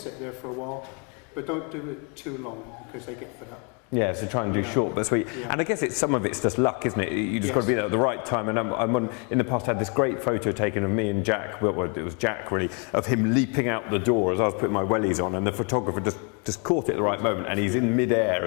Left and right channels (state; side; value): quieter; right; 35.7 dB